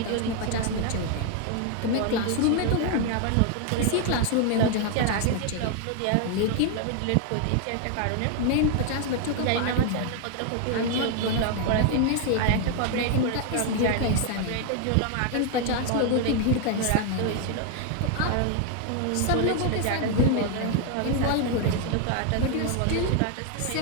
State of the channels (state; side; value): different; both; correlation 0.00